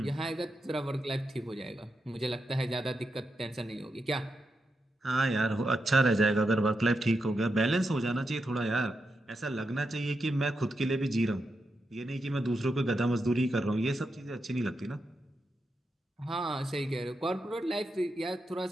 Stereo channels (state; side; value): normal; both; correlation 0.86